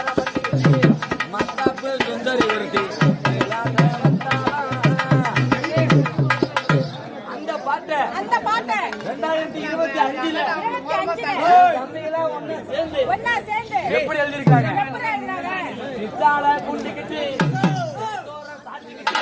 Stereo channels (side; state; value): both; identical; correlation 1.00